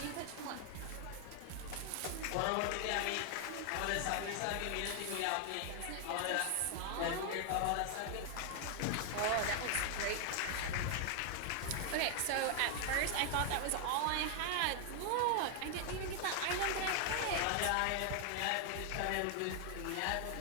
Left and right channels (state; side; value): different; both; correlation 0.00